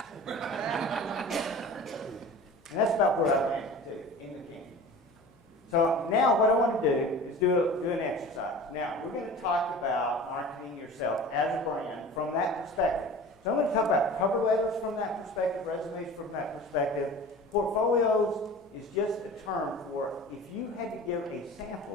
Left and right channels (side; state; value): both; normal; correlation 0.38